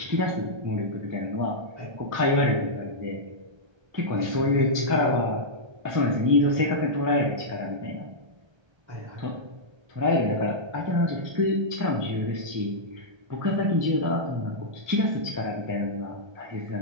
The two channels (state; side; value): late; left; 1.3 ms